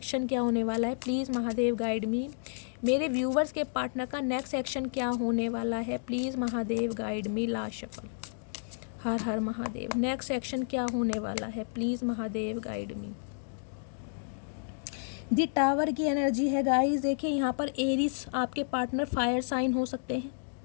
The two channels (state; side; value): silent; right; digital silence